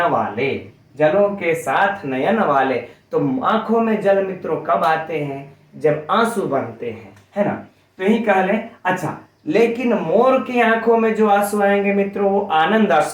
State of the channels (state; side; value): identical; both; correlation 1.00